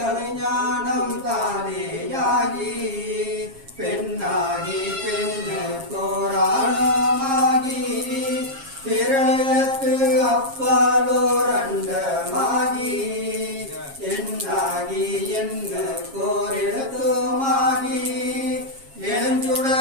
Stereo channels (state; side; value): late; left; 7.4 ms